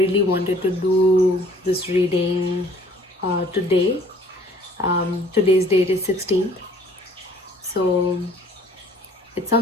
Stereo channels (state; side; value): normal; both; correlation 0.56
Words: wanted to do this reading today. Today's date is 16th, so it